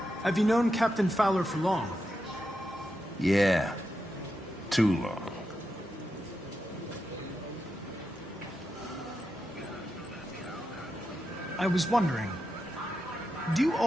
Have you known Captain Fowler for long? Yeah. Too long. I was wondering, do you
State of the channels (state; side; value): normal; both; correlation 0.87